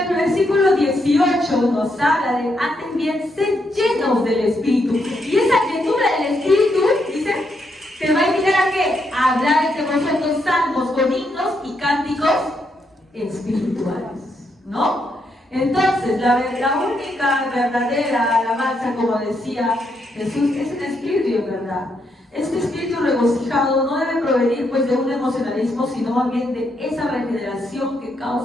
versículo 18 nos habla de, antes bien, ser llenos del Espíritu. Y esa llenura del Espíritu, dice, te va a invitar a qué? A hablar entre vosotros salmos con himnos y cánticos espirituales, ¿no? Entonces, la única verdadera alabanza, como decía Jesús, es el Espíritu, ¿verdad? Este espíritu regocijado no debe provenir pues de un emocionalismo, sino más bien de esa regeneración que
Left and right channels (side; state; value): both; normal; correlation 0.78